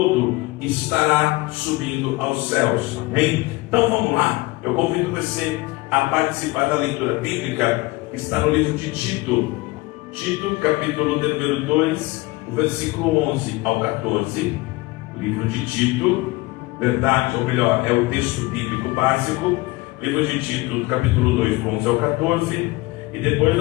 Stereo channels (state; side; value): quieter; right; 21.4 dB